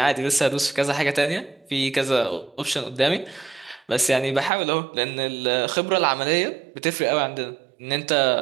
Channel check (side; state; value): left; drops out; at 4.5 s